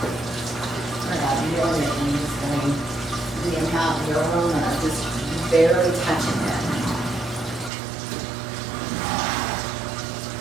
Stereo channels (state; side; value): drops out; left; at 7.7 s